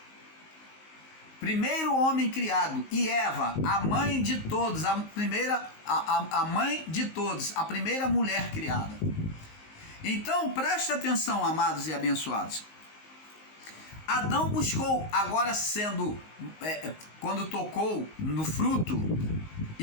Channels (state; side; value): late; right; 19 ms